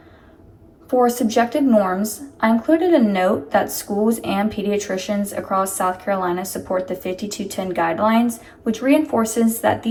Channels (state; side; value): identical; both; correlation 1.00